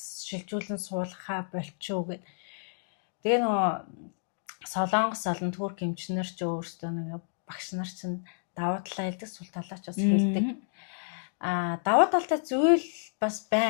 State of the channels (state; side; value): silent; right; digital silence